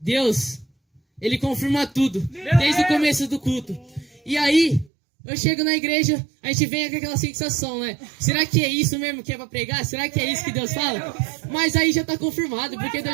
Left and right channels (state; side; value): drops out; left; at 4.9 s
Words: Deus, Ele confirma tudo. Desde o começo do culto. E aí, eu chego na igreja, a gente vem com aquela sensação, né? Será que é isso mesmo que é pra pregar? Será que é isso que Deus fala? Mas aí já tá confirmado, porque Deus